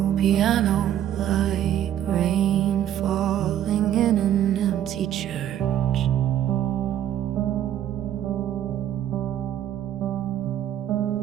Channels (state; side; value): quieter; left; 11.2 dB